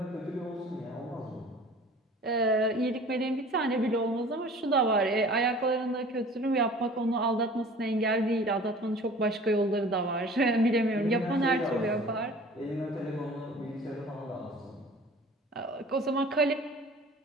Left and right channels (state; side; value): normal; both; correlation 0.45